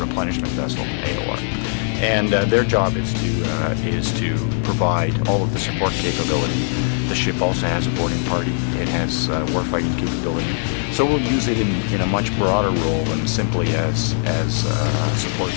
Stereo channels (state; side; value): silent; right; digital silence